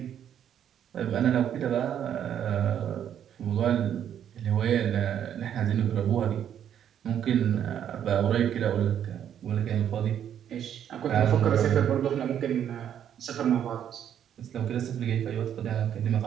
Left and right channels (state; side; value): quieter; left; 9.6 dB